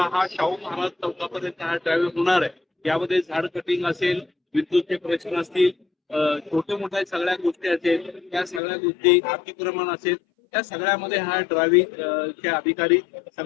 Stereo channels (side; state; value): right; drops out; at 8.6 s